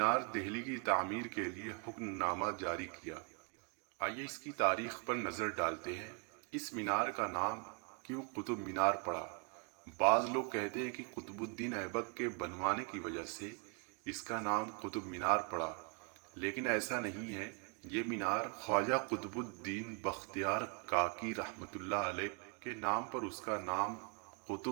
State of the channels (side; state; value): left; quieter; 34.8 dB